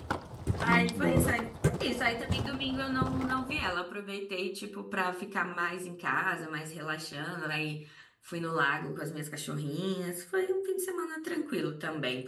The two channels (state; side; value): identical; both; correlation 1.00